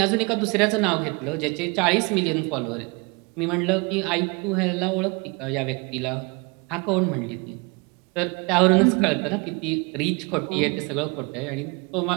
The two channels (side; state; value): left; quieter; 29.2 dB